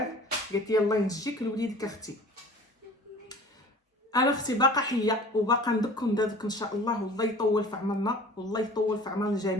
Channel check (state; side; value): normal; both; correlation 0.44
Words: قالت لي الله ينجيك لوليدك اختي. انا اختي باقا حيه وباقا ندك ان شاء الله، والله يطول في عمرنا والله يطول في عمر